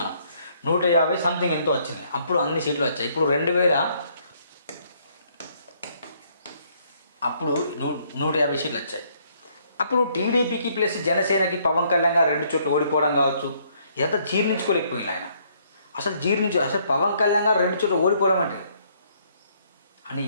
150 సంథింగ్ ఎంతో వచ్చినాయి. అప్పుడు అన్ని సీట్లు వచ్చాయి. ఇప్పుడు 150 సీట్లు వచ్చాయి. అప్పుడు టీడీపీకి ప్లస్ జనసేనకి పవన్ కళ్యాణ్ గారు 2 చోట్ల ఓడిపోవడం కావచ్చు, ఇదంతా జీర్ణించుకోలేకపోయింది ఆయన. అసలు పవన్ కళ్యాణ్ గారు 2 చోట్ల ఓడిపోవడం అంటే అని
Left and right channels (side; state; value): both; inverted; correlation -0.67